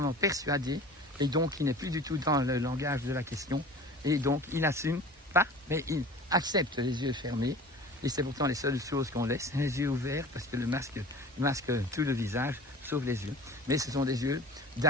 persuadé, et donc il n'est plus du tout dans le langage de la question, et donc il n'assume pas, mais il accepte les yeux fermés, et c'est pourtant les seules choses qu'on laisse, les yeux ouverts, parce que le masque tout le visage, sauf les yeux. Mais ce sont des yeux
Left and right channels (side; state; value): both; normal; correlation 0.40